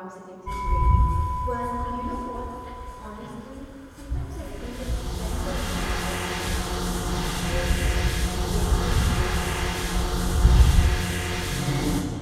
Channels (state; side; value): identical; both; correlation 1.00